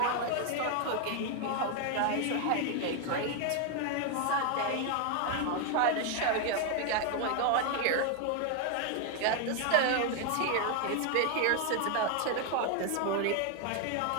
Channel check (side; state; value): both; different; correlation 0.01